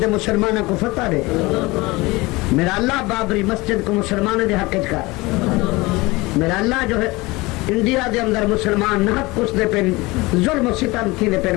دے مسلمانہ کو فتح دے، میرا اللہ بابری مسجد کو مسلمانہ دے حق کر، میرا اللہ جو ہے انڈیا دے اندر مسلمان نحق کچھ دے پہ ظلم و ستم تھی دے پہ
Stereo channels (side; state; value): right; quieter; 22.5 dB